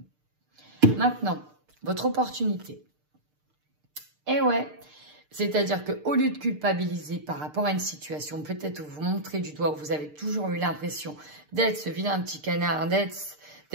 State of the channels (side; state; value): left; late; 6.6 ms